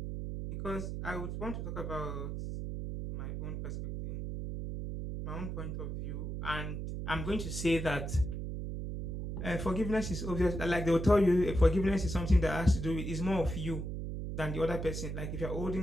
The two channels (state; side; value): noise; right; hum, 4 dB below the sound